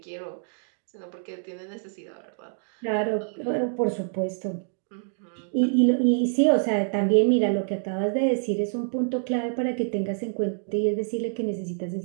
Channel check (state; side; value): silent; left; digital silence